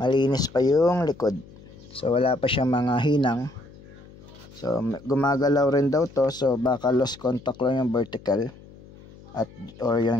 pa yung likod. So wala pa siyang mga hinang. So gumagalaw rin daw to, so baka lost contact lang yung vertical at or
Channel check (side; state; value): left; noise; hum, 21 dB below the sound